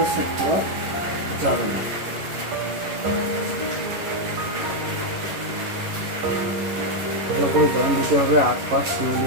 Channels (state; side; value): late; left; 11 ms